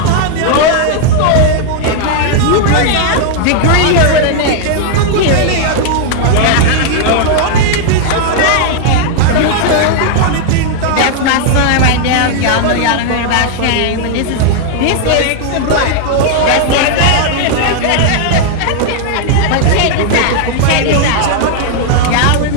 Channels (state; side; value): different; both; correlation 0.00